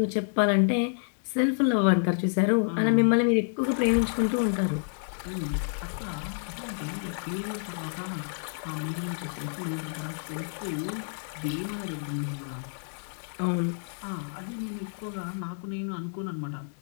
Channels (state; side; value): silent; right; digital silence